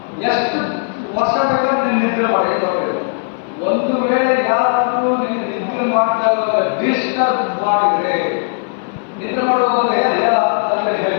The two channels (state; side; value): silent; right; 58 dB below the other